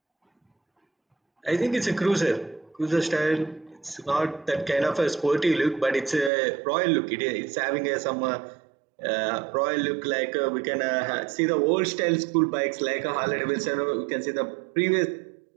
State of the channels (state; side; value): drops out; left; at 6.3 s